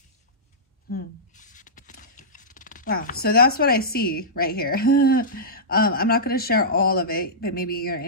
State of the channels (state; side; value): normal; both; correlation -0.16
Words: Wow, so that's what I see right here. I'm not going to share all of it, but maybe you're